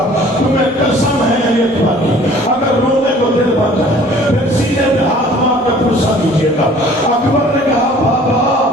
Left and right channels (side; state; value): both; normal; correlation 0.52